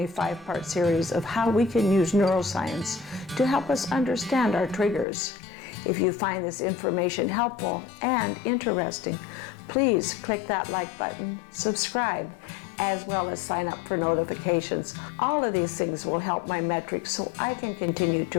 5-part series of how we can use neuroscience to help us understand our triggers. If you find this information helpful and interesting, please click that like button, subscribe, as well as sign up for notifications. All of these things will help my metrics so I can continue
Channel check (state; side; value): drops out; right; at 5.1 s